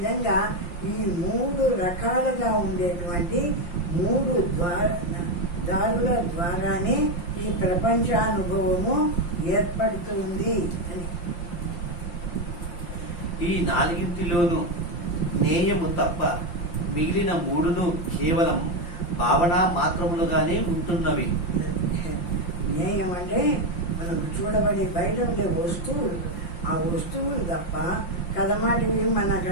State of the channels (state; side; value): late; right; 5.8 ms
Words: ఈ 3 రకాలుగా ఉండేటువంటి 3 దారుల ద్వారానే ఈ ప్రపంచానుభవము ఏర్పడుతుంది అని. ఈ 4 జ్ఞేయము తప్ప మిగిలిన 3 కేవలం భావన మాత్రములుగానే ఉంటున్నవి. జ్ఞేయం అంటే మనకు చూడబడి బయట ఉండే వస్తువులు, ఆ వస్తువులు తప్ప కదమాటివి మన